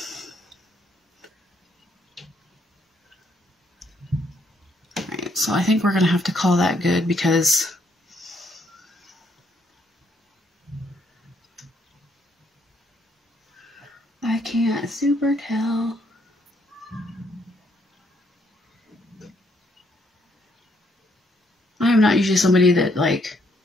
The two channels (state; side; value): normal; both; correlation 0.71